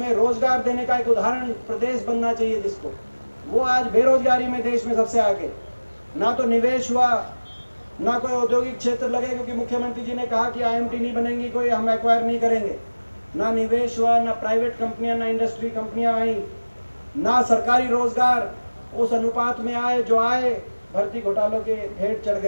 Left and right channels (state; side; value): inverted; both; correlation -1.00